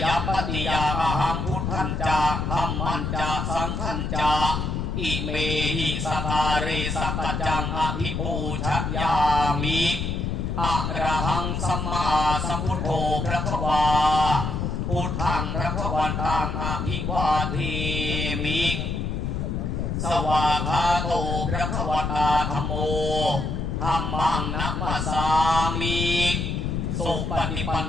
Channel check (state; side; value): noise; left; rumble, 2 dB below the sound